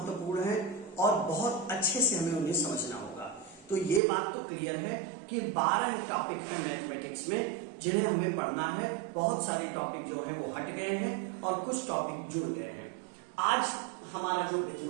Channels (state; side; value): drops out; left; at 4.0 s